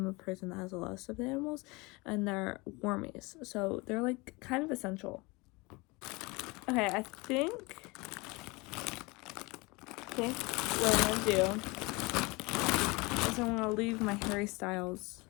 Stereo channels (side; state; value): right; quieter; 25.4 dB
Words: a person that has a lot of stuffed animals, and they're warmies, so they're like kind of essential. Okay, I think what I'm gonna do is I'm gonna leave my Harry Styles